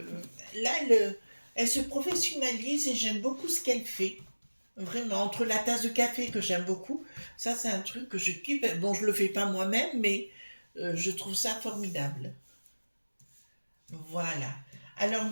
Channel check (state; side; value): inverted; both; correlation -1.00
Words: là, elle se professionnalise et j'aime beaucoup ce qu'elle fait. Vraiment, entre la tasse de café que j'aime beaucoup, ça c'est un truc que je kiffe. Bon, je le fais pas moi-même, mais je trouve ça formidable. Voilà. Alors,